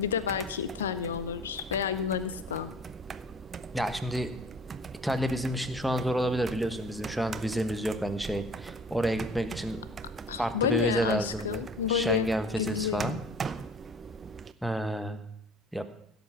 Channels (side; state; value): both; normal; correlation 0.46